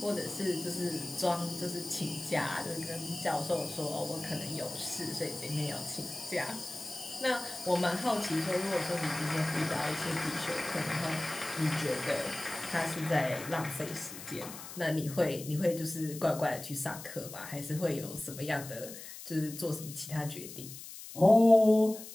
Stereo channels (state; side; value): noise; left; hiss, 12 dB below the sound